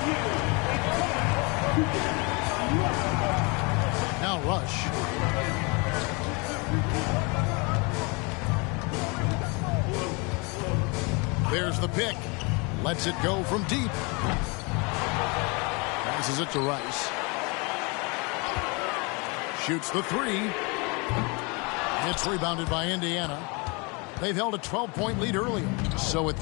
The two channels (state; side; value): quieter; right; 29.9 dB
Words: Now Rush. There's the pick. Lets it go from deep. Passes it to Rice. Shoots the three. It's rebounded by Indiana. They've held a 12-point lead earlier. So with